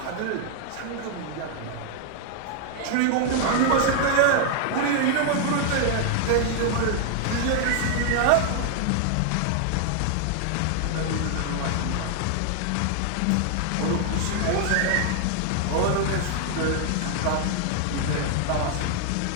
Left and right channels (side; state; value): both; different; correlation 0.00